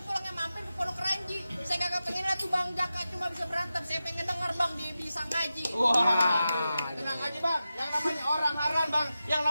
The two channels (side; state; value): both; inverted; correlation -0.92